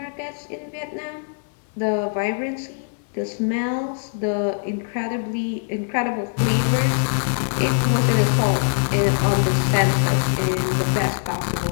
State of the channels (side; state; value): right; silent; digital silence